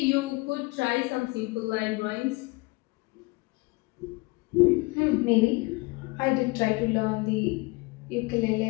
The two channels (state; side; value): quieter; right; 25.2 dB